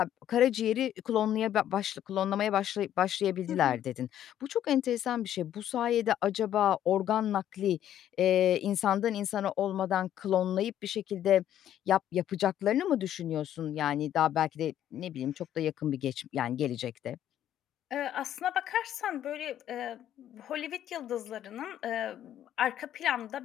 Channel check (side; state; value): right; quieter; 11.2 dB